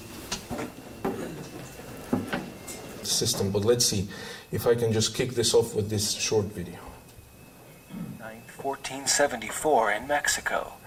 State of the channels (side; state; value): both; identical; correlation 1.00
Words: System, but let's see if I can just kick this off with this short video. 1474 in Mexico.